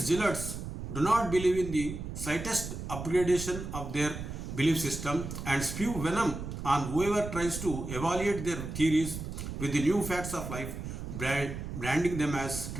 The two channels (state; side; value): noise; right; rumble, 7 dB below the sound